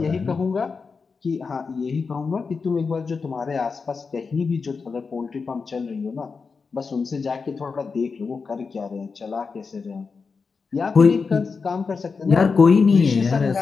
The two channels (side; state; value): right; quieter; 4.9 dB